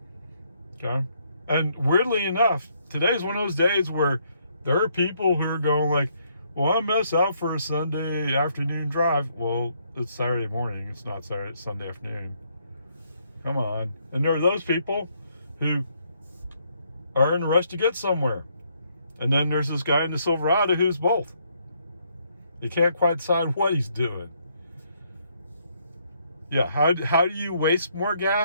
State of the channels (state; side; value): inverted; both; correlation -0.71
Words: Okay? And weirdly enough, today's one of those days where there are people who are going like, well, I mess out for a Sunday afternoon drive. Well, it's Saturday morning. It's not Sunday afternoon. Come on. And there are those people who are in a rush to get somewhere. And then there's this guy in the Silverado who's both. He can't quite decide what he's doing. Yeah, how do you waste more